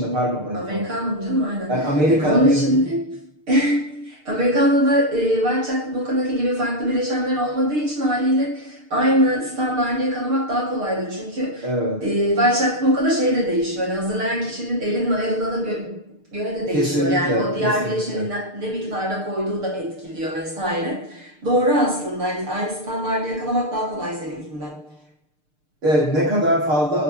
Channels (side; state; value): left; late; 6.6 ms